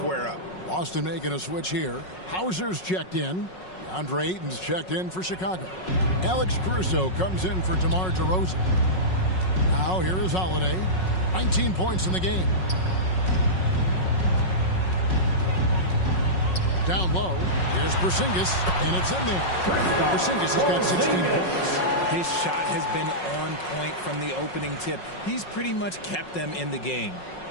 up. Boston making a switch here. Hauser's checked in. DeAndre Ayton's checked in for Chicago. Alex Caruso comes in for DeMar DeRozan. Now here is Holiday. 19 points in the game. Down low. Here's Porzingis, and it's in there. Porzingis has got 16 points. His shot has been on point from the opening tip. He's pretty much kept them in the game.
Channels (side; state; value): right; late; 5.4 ms